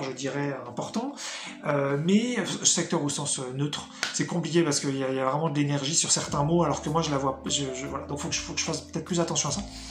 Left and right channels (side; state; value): both; identical; correlation 1.00